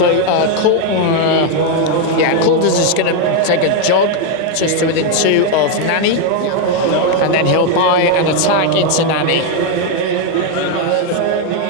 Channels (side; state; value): both; different; correlation 0.01